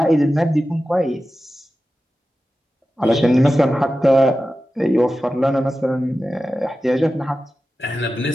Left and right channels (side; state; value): both; normal; correlation 0.93